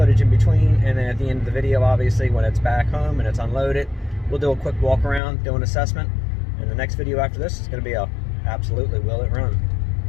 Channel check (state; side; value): drops out; right; at 5.2 s